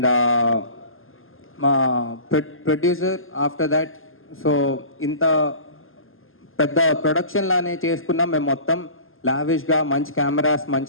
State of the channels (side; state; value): right; late; 0.60 ms